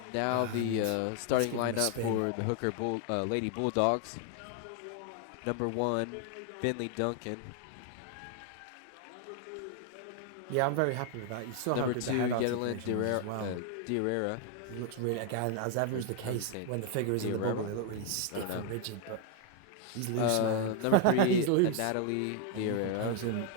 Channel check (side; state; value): both; different; correlation 0.00